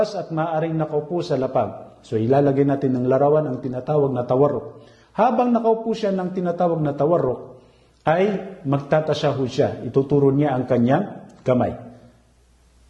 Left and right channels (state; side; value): identical; both; correlation 1.00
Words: at maaaring nakaupo sa lapag. So ilalagay natin ng larawan ang tinatawag na tawarruk. Habang nakaupo siya ng tinatawag na tawarruk, ay magtatasyahud siya. Ituturo niya ang kanyang kamay.